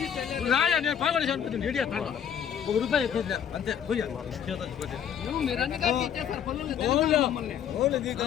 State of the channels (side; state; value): right; quieter; 8.8 dB